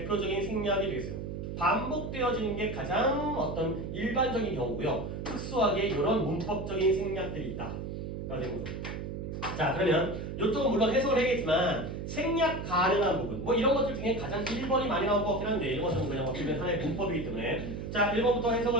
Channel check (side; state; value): right; noise; hum, 6 dB below the sound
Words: 생략이 되겠어요. 반복되어지는 게 가장 어떤 일반적인 경우고요. 특수하게 이런 문법적인 생략들이 있다. 라는 거죠. 자 그러면 이쪽은 물론 해석을 해야겠지만 생략 가능한 부분 뭐 이런 것들 중에 가장 1번이 많이 나올 것 같긴 한데 이런 것은 그냥 어떻게 보면 하나의 문법이기 때문에 자 1번부터 해석을